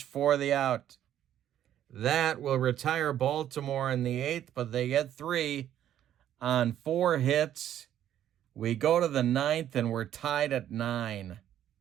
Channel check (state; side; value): quieter; left; 11.1 dB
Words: for the out. That will retire Baltimore in the 8th, but they get 3 on 4 hits. We go to the 9th, and we're tied at 9.